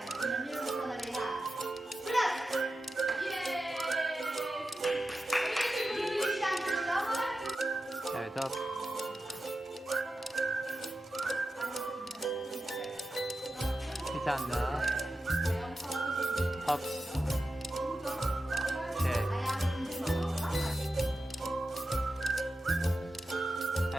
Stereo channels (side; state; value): both; normal; correlation 0.92